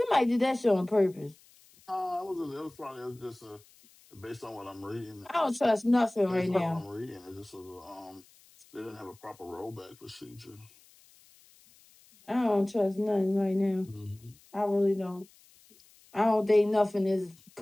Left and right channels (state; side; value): noise; left; hiss, 28 dB below the sound